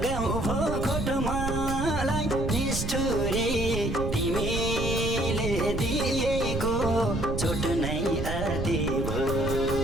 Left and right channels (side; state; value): right; noise; rumble, 3 dB below the sound